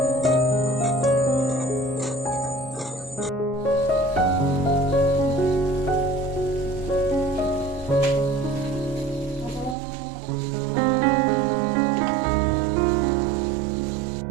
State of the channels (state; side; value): drops out; left; at 9.8 s